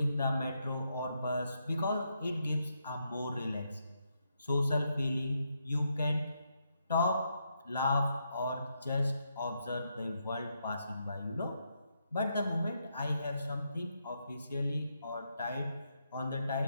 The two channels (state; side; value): inverted; both; correlation -0.80